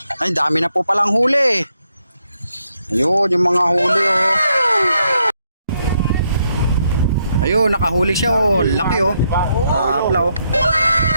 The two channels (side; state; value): both; inverted; correlation -0.77